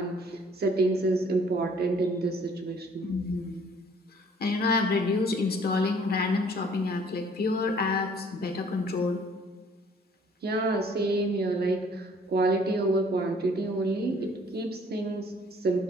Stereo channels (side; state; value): both; normal; correlation 0.58